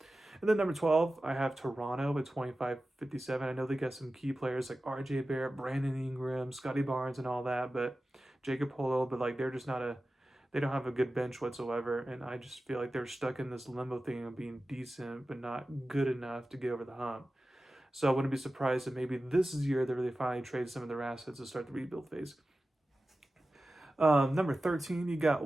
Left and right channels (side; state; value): both; normal; correlation 0.95